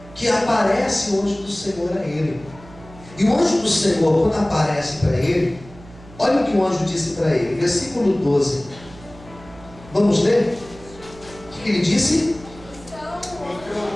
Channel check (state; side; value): noise; right; hum, 20 dB below the sound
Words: que aparece o anjo do Senhor a ele. E o anjo do Senhor, quando aparece para ele, olha o que o anjo disse para ele, versículo 12. Vamos ler? O que ele disse?